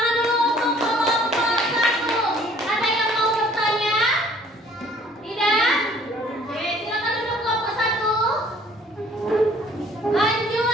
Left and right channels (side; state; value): both; normal; correlation 0.56